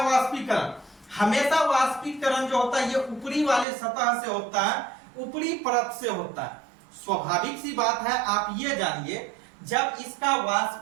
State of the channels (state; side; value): drops out; left; at 3.7 s